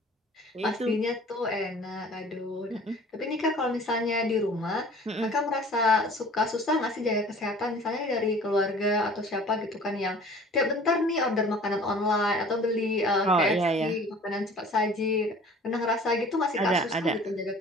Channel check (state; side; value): normal; both; correlation 0.48